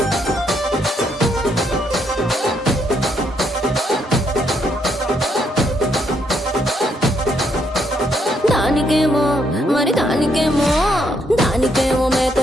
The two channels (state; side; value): normal; both; correlation 0.74